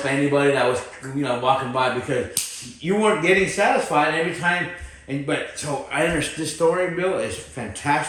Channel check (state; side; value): identical; both; correlation 1.00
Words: anybody that was, you know, walking by because you weren't getting satisfied every time. But so I understand this story, Bill, is